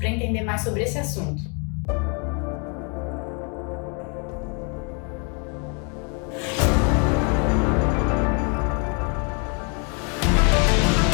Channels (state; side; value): quieter; right; 36.5 dB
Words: entender mais sobre esse assunto.